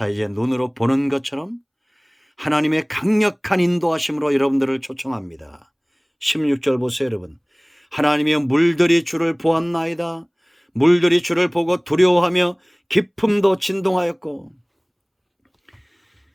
이제 눈으로 보는 것처럼 하나님의 강력한 인도하심으로 여러분들을 초청합니다. 16절 보세요, 여러분. 하나님의 물들이 주를 보았나이다. 물들이 주를 보고 두려워하며 깊음도 진동하였고.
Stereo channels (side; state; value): both; identical; correlation 1.00